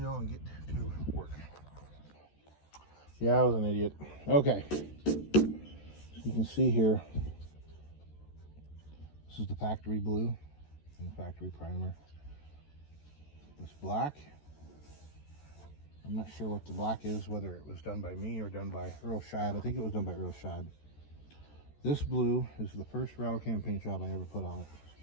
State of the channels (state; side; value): late; right; 14 ms